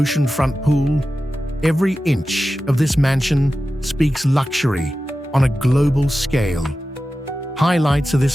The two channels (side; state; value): both; normal; correlation 0.94